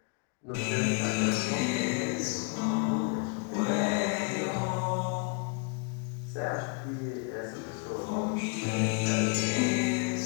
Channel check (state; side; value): quieter; right; 35.2 dB